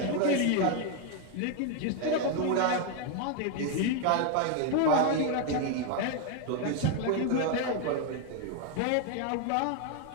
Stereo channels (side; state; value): both; different; correlation 0.01